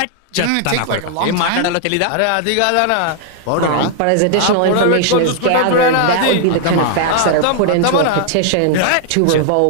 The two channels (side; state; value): both; different; correlation 0.00